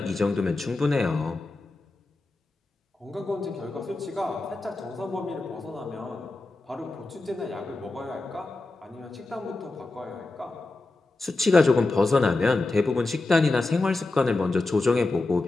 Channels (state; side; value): quieter; right; 3.2 dB